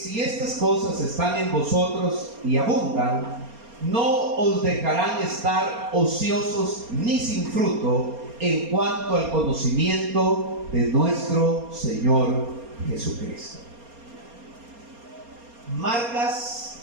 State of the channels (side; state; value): left; late; 4.3 ms